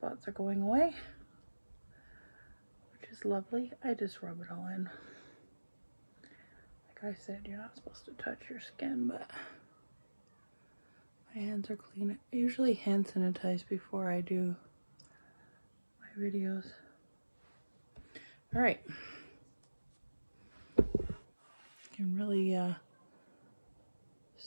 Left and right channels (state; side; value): inverted; both; correlation -1.00